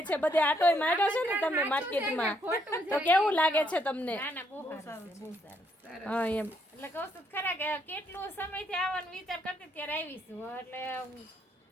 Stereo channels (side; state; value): both; normal; correlation 0.72